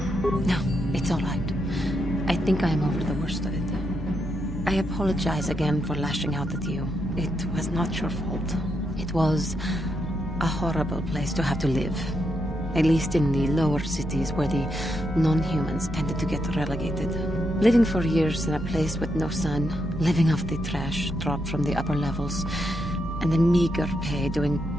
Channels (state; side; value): normal; both; correlation 0.81